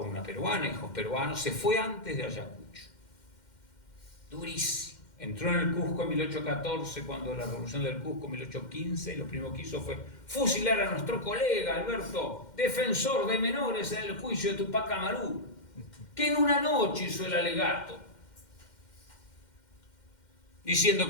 una peruana, hijos peruanos, se fue antes de Ayacucho. durísimo. Entró en el Cusco en 1814, cuando la revolución del Cusco en 1815, y lo primero que hizo fue fusilar a nuestro colega Alberto, defensor de menores en el juicio de Tupac Amaru, que en una noche hizo el alegato, diciendo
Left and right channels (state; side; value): late; right; 2.1 ms